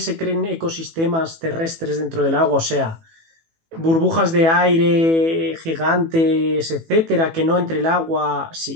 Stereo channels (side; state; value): left; late; 18 ms